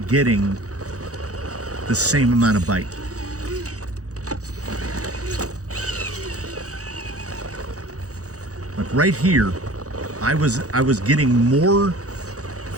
getting the same amount of bite. Like right here, I was getting more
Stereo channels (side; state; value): left; late; 0.66 ms